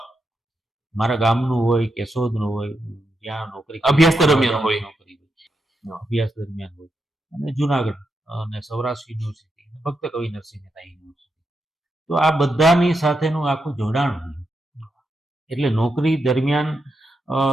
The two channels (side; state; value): both; normal; correlation 0.84